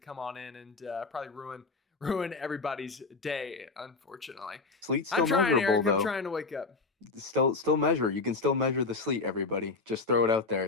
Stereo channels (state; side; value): quieter; right; 3.9 dB